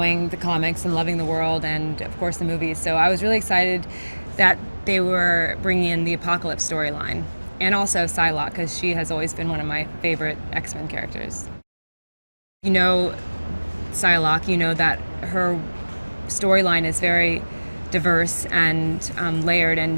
the comics and loving the world and, of course, the movies. So I was really excited that they were bringing in the Apocalypse storyline and also Psylocke, because she has always been one of my favorite X-Men characters. You know Psylocke, you know that her storyline is very diverse and layered,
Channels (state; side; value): inverted; both; correlation -1.00